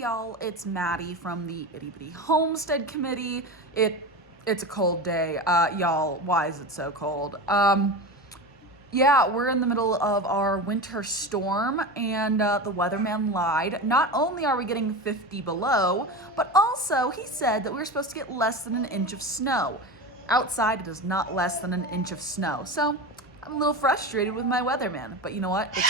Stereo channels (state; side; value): normal; both; correlation 0.25